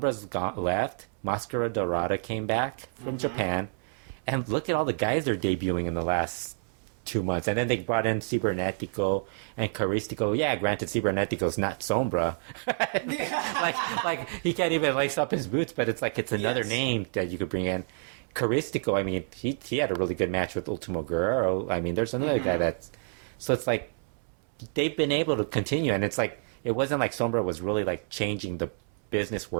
left, Mascara Dorada came back from Japan, and look at all the guys they're debuting in the last 2 months, and then they brought in Cibernetico and Caristico. Yeah, granted, Cibernetico's not Sombra. like he can't even lace up his boots, but it's like it's another name that you could bring in. Caristico, I mean, he had a really good match with Ultimo Guerrero. I mean, there's another guy that's so it's like they've been able to continue, and it's like it wasn't like Sombra was really like changing the business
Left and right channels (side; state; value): left; silent; 59 dB below the other